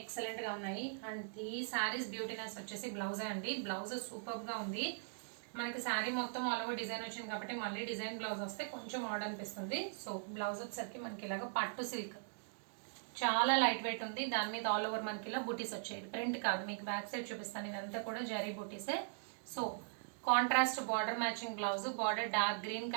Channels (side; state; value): left; silent; digital silence